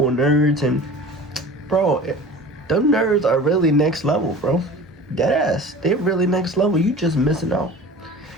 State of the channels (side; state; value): both; normal; correlation 0.39